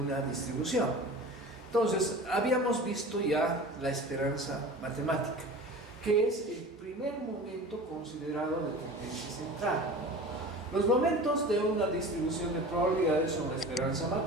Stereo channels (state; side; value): normal; both; correlation 0.37